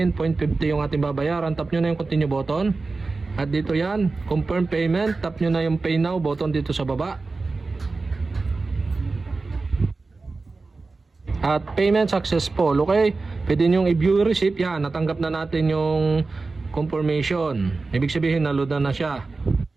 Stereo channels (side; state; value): left; quieter; 3.8 dB